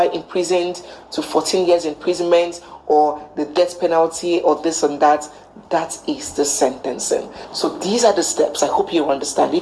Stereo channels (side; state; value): both; identical; correlation 1.00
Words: imprisoned to 14 years imprisonment, or the death penalty, or this and that. That is the sentencing. So these are the steps. I hope you understand.